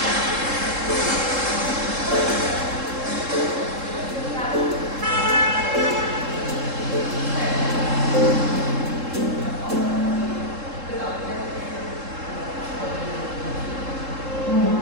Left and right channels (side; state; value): left; late; 3.7 ms